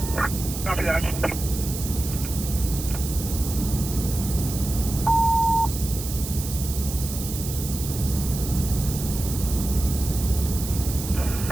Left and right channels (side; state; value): right; noise; hiss, 8 dB below the sound